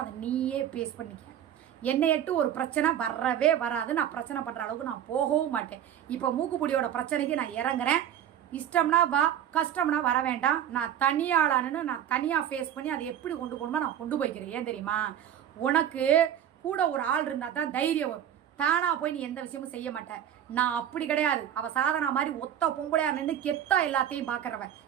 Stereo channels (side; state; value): left; quieter; 10.3 dB